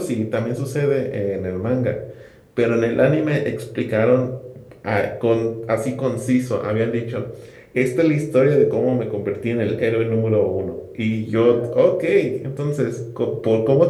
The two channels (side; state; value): both; identical; correlation 1.00